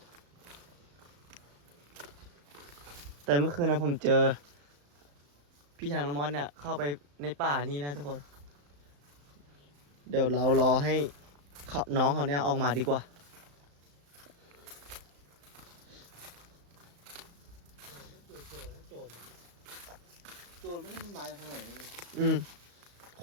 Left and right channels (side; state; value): left; late; 35 ms